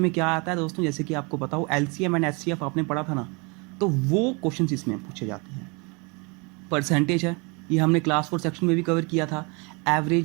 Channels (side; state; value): left; quieter; 30.3 dB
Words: में क्या आता है दोस्तों, जैसे कि आपको पता हो LCM एंड HCF आपने पढ़ा था ना, तो वो क्वेश्चन इसमें पूछे जाते हैं। परसेंटेज है, ये हमने क्लास 4 सेक्शन में भी कवर किया था।